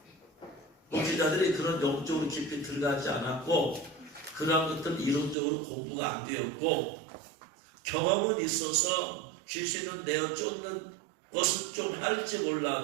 목회자들이 그런 영적으로 깊이 들어가지 않았고, 그러한 것들은 이론적으로 공부가 안 되었고, 경험은 있어서 귀신은 내어 쫓는 것은 좀 할지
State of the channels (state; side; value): drops out; left; at 5.4 s